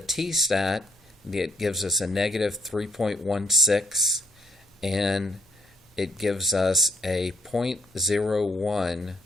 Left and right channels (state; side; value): normal; both; correlation 0.69